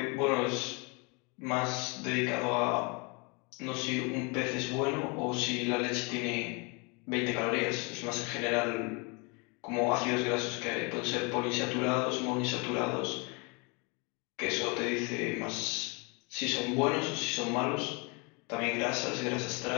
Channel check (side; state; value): right; quieter; 30.9 dB